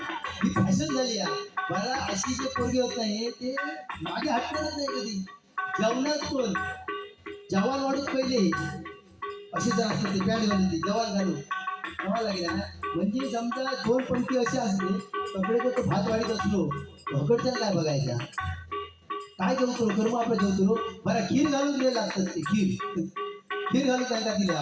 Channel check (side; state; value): both; identical; correlation 1.00